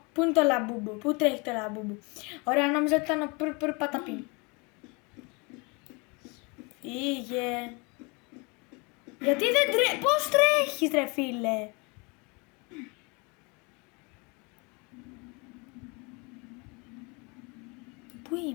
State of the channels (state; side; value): quieter; right; 29.4 dB